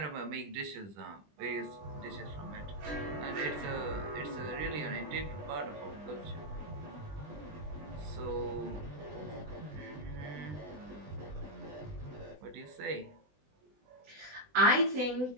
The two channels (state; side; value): late; left; 20 ms